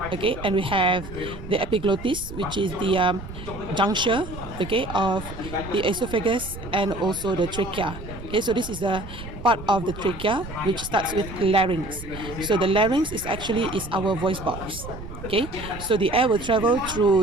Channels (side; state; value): right; noise; rumble, 12 dB below the sound